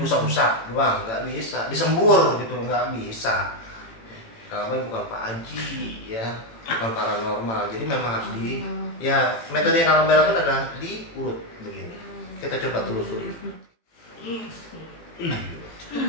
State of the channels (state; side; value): late; right; 18 ms